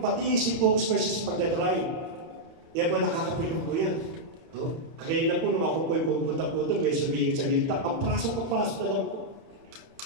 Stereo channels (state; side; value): late; left; 31 ms